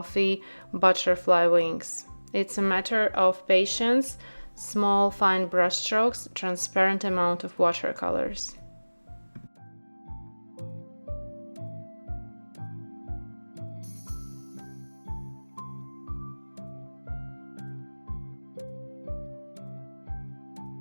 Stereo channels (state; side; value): inverted; both; correlation -1.00